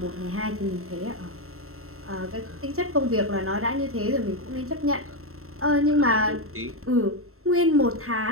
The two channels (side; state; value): left; late; 0.63 ms